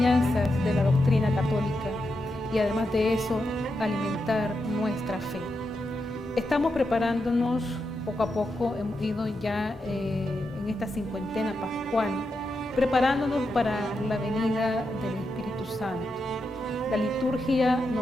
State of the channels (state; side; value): normal; both; correlation 0.86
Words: de la doctrina católica y además de eso alimentar nuestra fe. Estamos preparándonos poco a poco, hemos ido ya en esta cincuentena pascual, preparándonos para la venida del Espíritu Santo. La liturgia